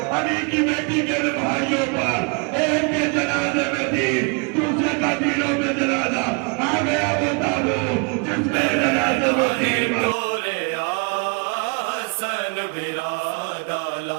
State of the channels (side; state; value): left; quieter; 34.4 dB